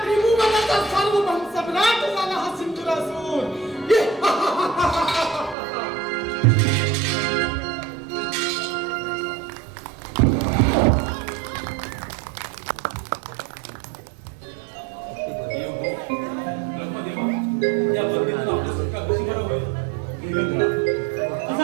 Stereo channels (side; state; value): left; drops out; at 5.6 s